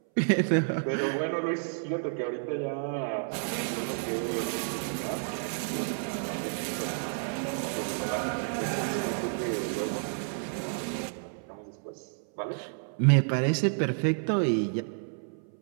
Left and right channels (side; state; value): left; silent; 58 dB below the other